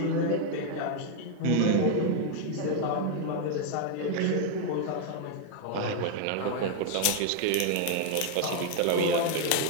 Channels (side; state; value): both; different; correlation 0.00